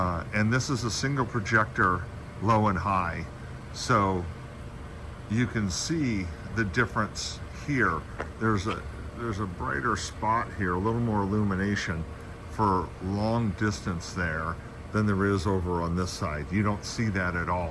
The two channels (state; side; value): identical; both; correlation 1.00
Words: this is a single projector, low and high. So you can see the difference here. There's a brighter spot here, a little more illumination for long distance there than there is over on this side. You don't see that at